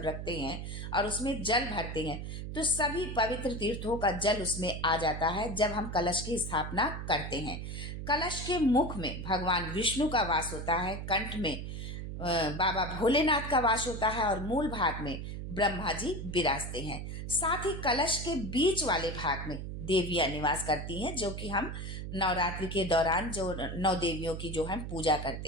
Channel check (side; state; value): right; noise; hum, 6 dB below the sound